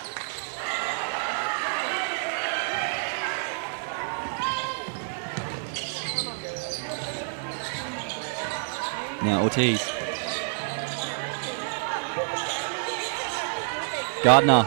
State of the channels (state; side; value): silent; left; 59 dB below the other